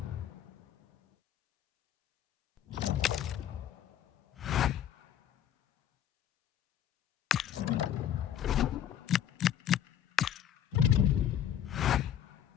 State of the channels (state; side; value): quieter; right; 10.3 dB